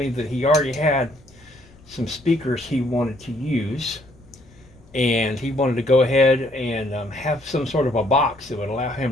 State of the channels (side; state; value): left; noise; rumble, 26 dB below the sound